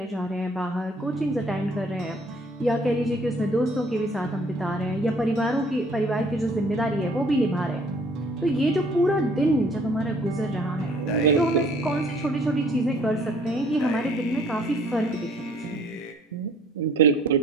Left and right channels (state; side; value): normal; both; correlation 0.58